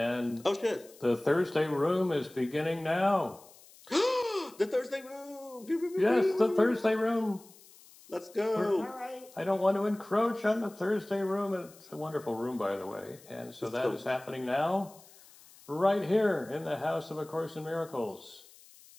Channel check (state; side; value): noise; left; hiss, 24 dB below the sound